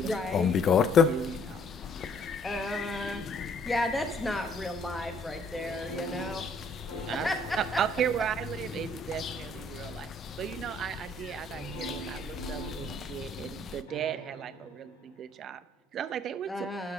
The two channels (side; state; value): both; normal; correlation 0.62